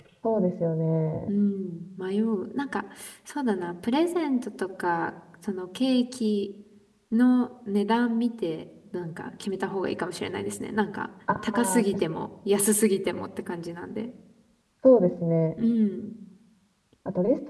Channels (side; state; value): both; identical; correlation 1.00